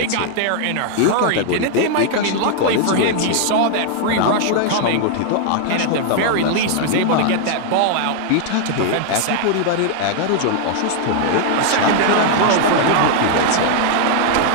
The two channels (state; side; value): different; both; correlation 0.00